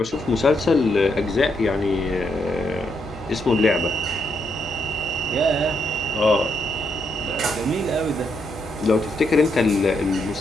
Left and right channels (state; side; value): noise; right; hum, 18 dB below the sound